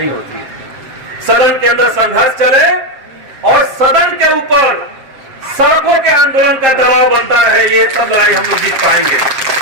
होती है। सदन के अंदर संघर्ष चले और सदन के ऊपर सड़कों के आंदोलन का दबाव बनता रहे, ये सब लड़ाई हम लोग जीत पाएंगे।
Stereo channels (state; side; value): late; left; 7.6 ms